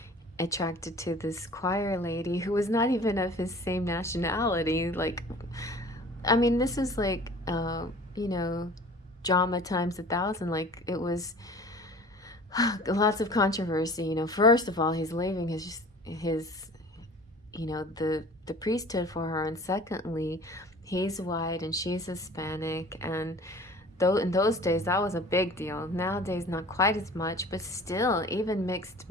attracted to this choir lady who was not even of his same nationality. Like, I mean, this is like, you know, drama times 1,000. Like, it was lots of controversy. You know, first of all, he's leaving his you know, the priesthood for her, and secondly, he's white and she's Hispanic, and though in those days that was a big deal. Nowadays not quite as much, but still, even mixed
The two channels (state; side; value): normal; both; correlation 0.45